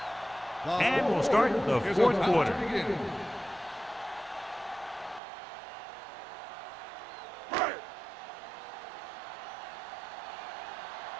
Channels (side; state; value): left; drops out; at 5.2 s